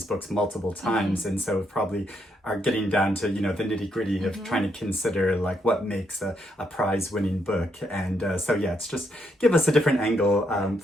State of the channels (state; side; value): normal; both; correlation 0.77